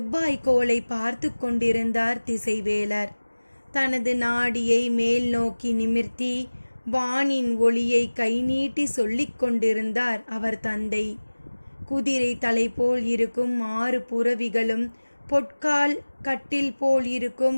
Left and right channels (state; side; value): inverted; both; correlation -1.00